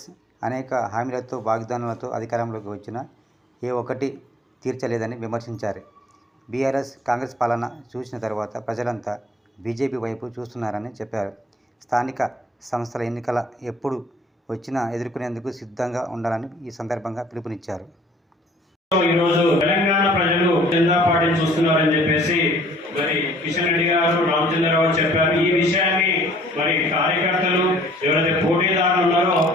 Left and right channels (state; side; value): normal; both; correlation 0.55